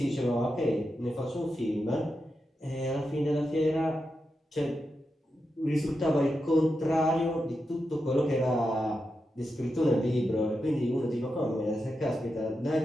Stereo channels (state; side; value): normal; both; correlation 0.88